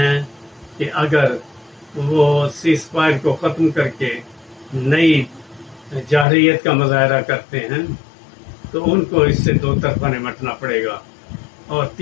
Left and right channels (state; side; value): drops out; right; at 6.2 s